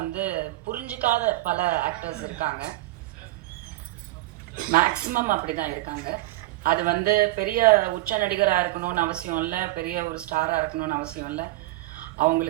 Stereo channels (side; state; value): left; quieter; 18.8 dB